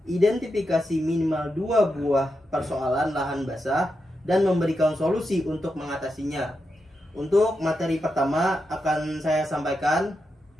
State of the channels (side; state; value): both; normal; correlation 0.87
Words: Identifikasi minimal 2 buah persoalan lahan basah dan memberikan solusi untuk mengatasinya. Untuk materi pertama akan saya sampaikan